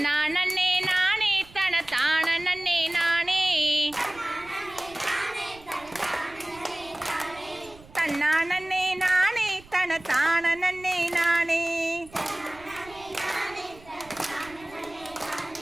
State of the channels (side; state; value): right; noise; rumble, 23 dB below the sound